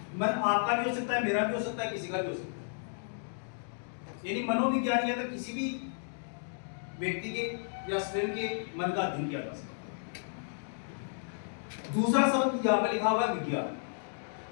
मन आपका भी हो सकता है, मेरा भी हो सकता है, किसी का भी हो सकता है। यानी मनोविज्ञान के अंदर किसी भी व्यक्ति के या स्वयं के मन का अध्ययन किया जा सकता है। दूसरा शब्द यहाँ पर लिखा हुआ है विज्ञान।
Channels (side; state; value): right; silent; digital silence